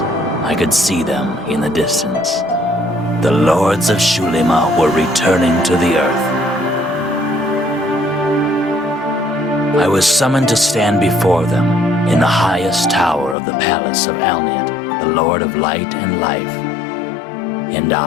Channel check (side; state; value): right; drops out; at 13.4 s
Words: I could see them in the distance. The Lords of Xulima were returning to the earth. I was summoned to stand before them in the highest tower of the palace of Alniat, the Lord of Light and Life. And